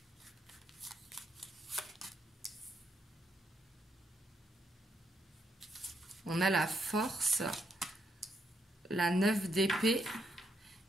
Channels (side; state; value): both; normal; correlation 0.77